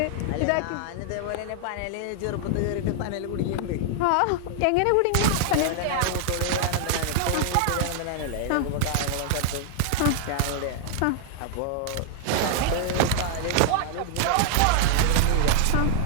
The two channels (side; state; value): both; different; correlation 0.00